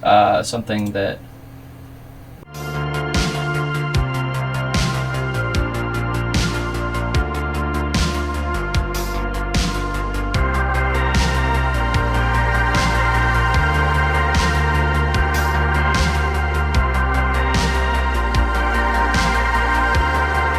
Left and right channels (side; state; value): both; identical; correlation 1.00